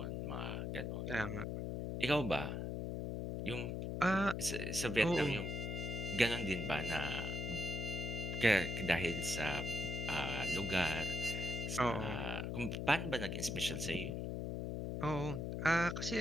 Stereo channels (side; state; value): left; noise; hum, 2 dB below the sound